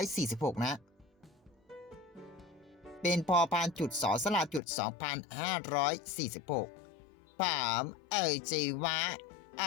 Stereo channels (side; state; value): right; drops out; at 4.6 s